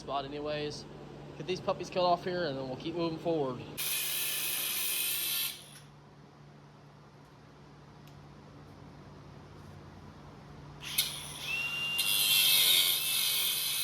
anyways. Get these puppies cut off here and then we'll keep moving forward.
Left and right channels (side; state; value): both; identical; correlation 1.00